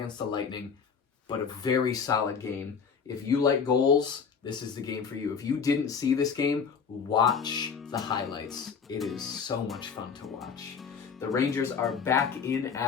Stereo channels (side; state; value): right; quieter; 6.2 dB